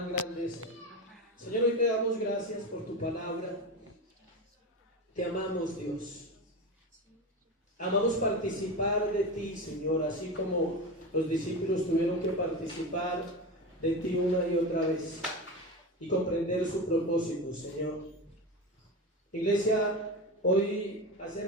grande es Él. Señor, hoy te damos gracias por tu palabra. Te amamos, Dios. Amamos participar de ti, Señor, así como los discípulos tuvieron que participar de ti una y otra vez y comprender su propósito, Señor. Iglesia, hoy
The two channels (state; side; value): normal; both; correlation 0.23